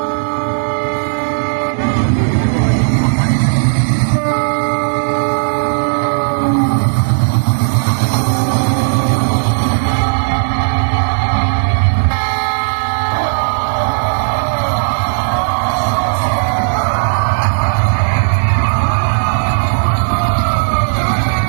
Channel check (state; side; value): silent; left; digital silence